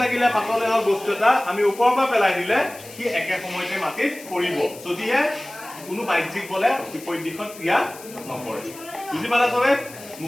লাগিলে পাতলে হওক বস্তু এটা আমি ওপৰৰ পৰা পেলাই দিলে সি একে সময়তে মাটিত পৰিব যদিহে কোনো বাহ্যিক বলে বিপৰীত দিশত ক্ৰিয়া নকৰে বুজি পালা চবে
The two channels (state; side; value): noise; left; hiss, 17 dB below the sound